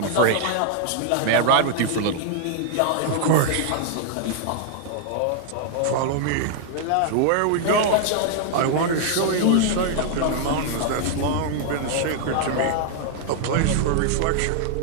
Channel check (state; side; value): different; both; correlation -0.01